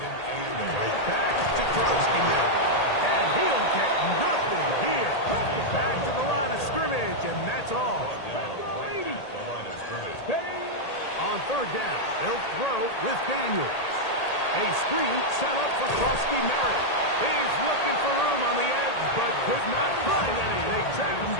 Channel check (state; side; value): late; right; 1.8 ms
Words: 8. Back to Krusty Merritt. And he'll get nothing here. Back to the line of scrimmage, and that's all. Right at the line of scrimmage. On third down, they'll throw with Daniels. A screen set up for Krusty Merritt. He's looking for room on the edge, but could not find any. They track him